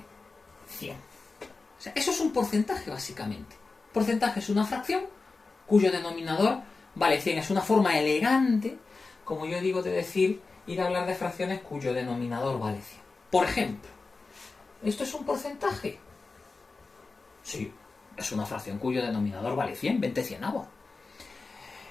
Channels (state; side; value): quieter; right; 4.0 dB